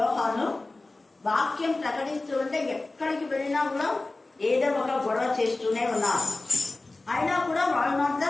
వాక్యం ప్రకటిస్తూ ఉంటే ఎక్కడికి వెళ్ళినా కూడా ఏదో ఒక గొడవ చేస్తూనే ఉన్నారు. అయినా కూడా వాళ్ళు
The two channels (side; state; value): right; quieter; 3.1 dB